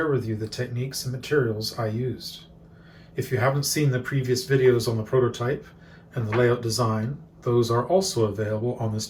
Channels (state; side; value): identical; both; correlation 1.00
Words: with you the techniques and materials I used. If you haven't seen the previous videos on the prototype and the layout design, those are also available on this